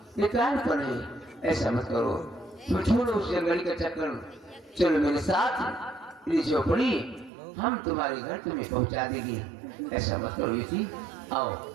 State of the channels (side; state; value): left; drops out; at 7.3 s